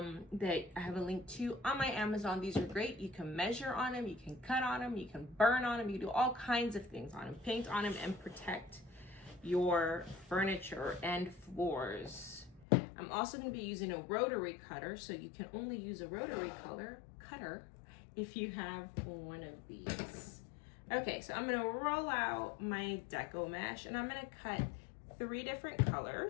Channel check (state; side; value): drops out; right; at 12.7 s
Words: I have a link to on my Amazon. These are great. You can measure on them, you can cut on them, you can burn on them, you can do all kinds of things on them, paint on them, and protect your furniture and floors. I'm also going to be using a rotary cutter, so you can only use a rotary cutter if you have one of these. Okay, so I'm going to roll out my deco mesh, and I'm going to cut 3 different